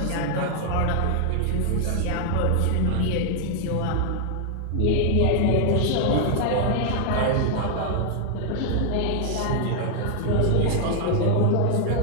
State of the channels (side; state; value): both; different; correlation 0.00